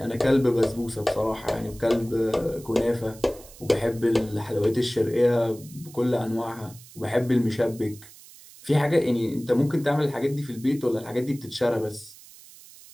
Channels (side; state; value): right; noise; hiss, 20 dB below the sound